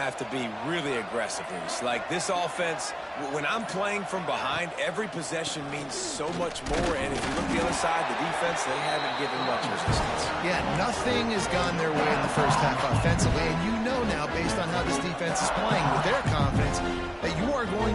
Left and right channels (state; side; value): identical; both; correlation 1.00